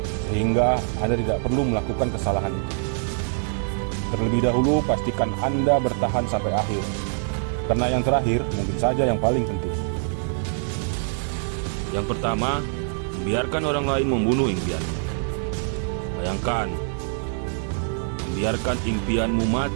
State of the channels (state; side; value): silent; left; 57 dB below the other